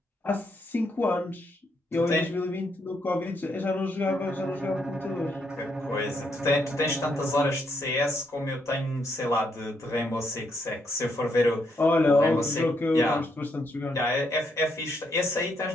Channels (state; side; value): normal; both; correlation 0.76